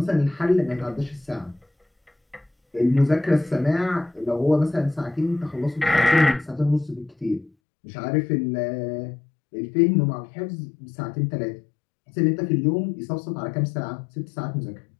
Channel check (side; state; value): right; drops out; at 7.5 s